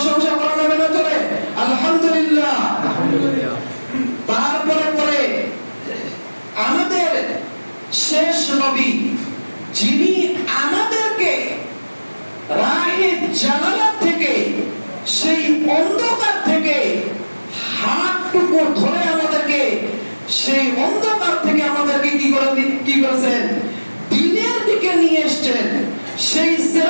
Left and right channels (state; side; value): inverted; both; correlation -1.00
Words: করা যাবে না? চলে আলহামদুলিল্লাহ। তারপরে পরে আমাদের শেষ নবী, যিনি আমাদেরকে রাহে জালালাত থেকে, সেই অন্ধকার থেকে হাতটুকু ধরে আমাদেরকে সেই অন্ধকার থেকে আমাদেরকে কি করেছেন? দিনের দিকে নিয়ে এসেছেন। সেই